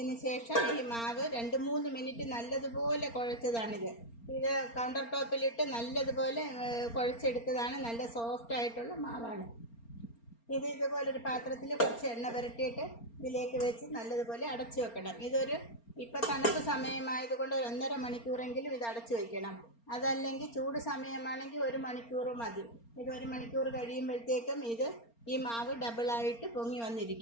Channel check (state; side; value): late; right; 4.3 ms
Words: ശേഷം ഈ മാവ് 2-3 മിനിറ്റ് നല്ലതുപോലെ കുഴച്ചതാണിത്. ഇത് കൗണ്ടർ ടോപ്പിലിട്ട് നല്ലതുപോലെ കുഴച്ചെടുത്തതാണ്. നല്ല സോഫ്റ്റ് ആയിട്ടുള്ള മാവാണ് ഇത്. ഇതുപോലൊരു പാത്രത്തിൽ കുറച്ച് എണ്ണ പുരട്ടിയിട്ട് ഇതിലേക്ക് വെച്ച് നല്ലതുപോലെ അടച്ചു വെക്കണം. ഇപ്പം തണുപ്പ് സമയമായതുകൊണ്ട് 1.5 മണിക്കൂറെങ്കിലും ഇത് അടച്ചു വയ്ക്കണം. അതല്ലെങ്കിൽ ചൂട് സമയമാണെങ്കിൽ 1 മണിക്കൂർ മതി. ഇത് 1 മണിക്കൂർ കഴിയുമ്പോഴത്തേക്കും ഈ മാവ് ഡബിളായിട്ട് പൊങ്ങി